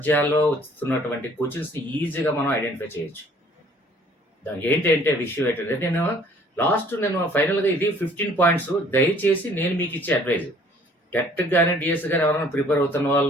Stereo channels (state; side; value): normal; both; correlation 0.57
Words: వస్తున్నటువంటి క్వశ్చన్స్ని ఈజీగా మనం ఐడెంటిఫై చేయొచ్చు. దానికి ఏంటంటే విషయం ఏంటంటే నేను ఫైనల్గా ఇది 15 పాయింట్స్. దయచేసి నేను మీకు ఇచ్చే అడ్వైజ్, టెట్ కానీ డిఎస్ కానీ ఎవరైనా ప్రిపేర్ అవుతున్న